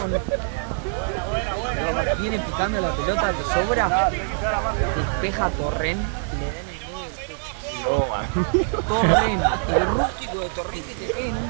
viene picando la pelota que sobra, despeja Torrent y le da en el medio del pecho. Torrent, el rústico de Torrent que te pega en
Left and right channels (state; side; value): silent; left; 63 dB below the other